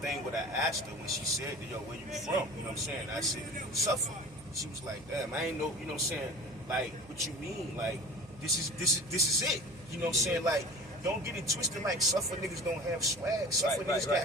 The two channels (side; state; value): right; noise; hum, 23 dB below the sound